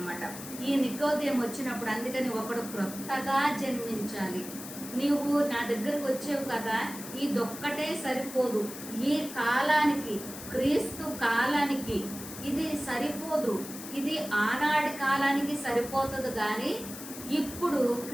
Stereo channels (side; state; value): left; noise; hiss, 12 dB below the sound